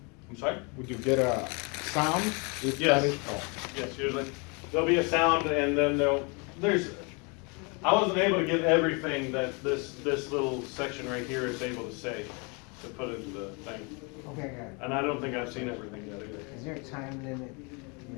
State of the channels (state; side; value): quieter; right; 31.8 dB